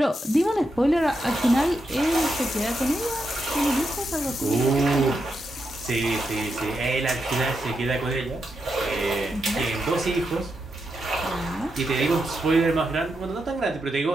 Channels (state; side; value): normal; both; correlation 0.85